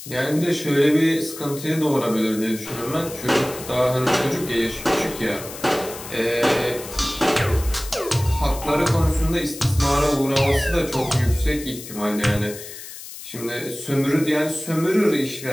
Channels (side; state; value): left; noise; hiss, 13 dB below the sound